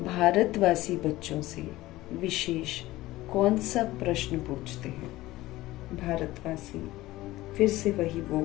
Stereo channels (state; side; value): quieter; right; 17.4 dB